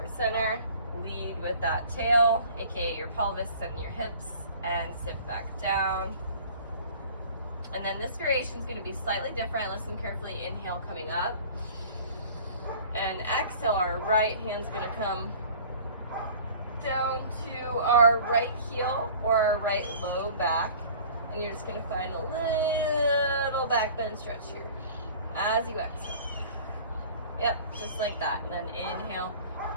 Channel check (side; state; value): both; inverted; correlation -0.45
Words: center. Lead with that tail, aka your pelvis and your hips, and sit back down. And then this variation is going to be slightly different. Listen carefully. Inhale, coming up. And exhale, our right hand's going to come down to our right heel or our right low back. And you're just going to find a little back bend stretch here as you exhale. Yep, just like that. And then inhale,